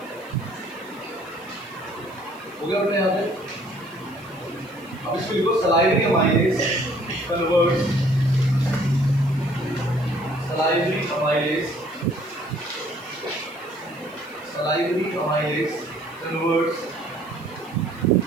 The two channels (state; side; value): noise; right; hiss, 27 dB below the sound